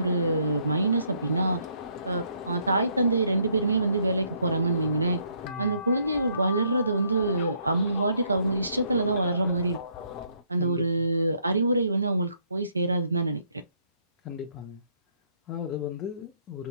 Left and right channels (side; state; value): both; inverted; correlation -0.71